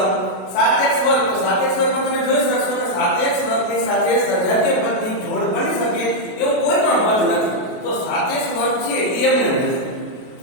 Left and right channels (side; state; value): right; late; 33 ms